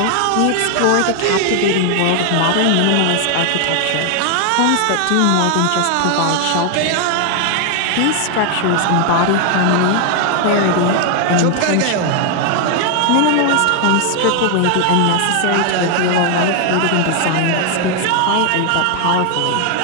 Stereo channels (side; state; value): both; different; correlation 0.00